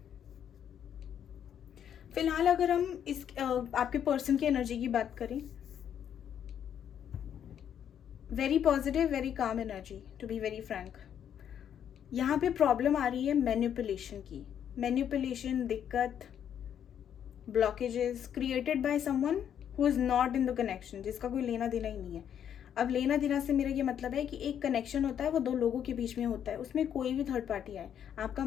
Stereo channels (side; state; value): right; quieter; 9.2 dB